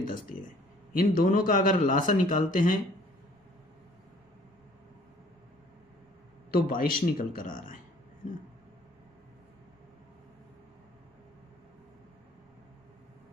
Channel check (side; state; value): both; normal; correlation 0.56